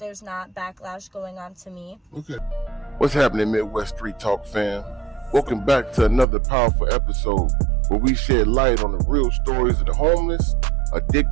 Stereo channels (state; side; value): drops out; left; at 6.2 s